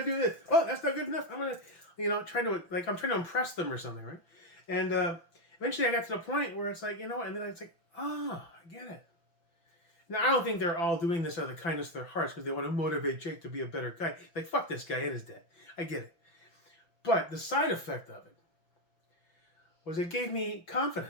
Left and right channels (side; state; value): right; late; 6.0 ms